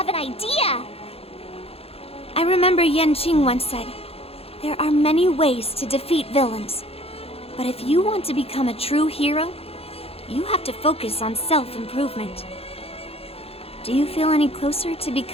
an idea! I remember Yan Qing once said, there are many ways to defeat villains. But if you want to become a true hero, you have to focus on self-improvement. Do you feel any closer to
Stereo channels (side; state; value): right; late; 0.28 ms